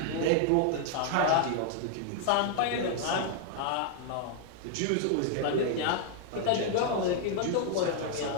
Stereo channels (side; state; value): both; different; correlation 0.00